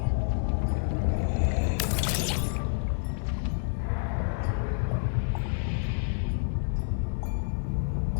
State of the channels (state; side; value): silent; right; digital silence